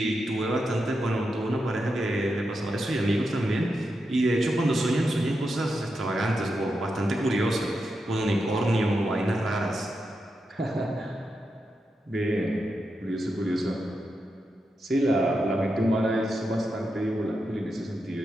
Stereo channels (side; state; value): both; normal; correlation 0.87